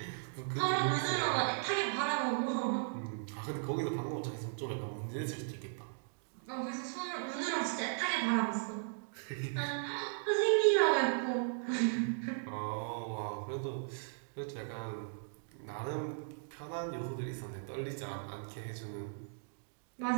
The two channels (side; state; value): left; silent; digital silence